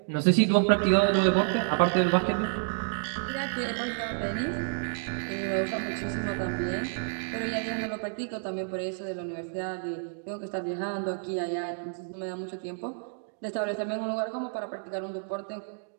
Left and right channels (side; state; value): left; silent; digital silence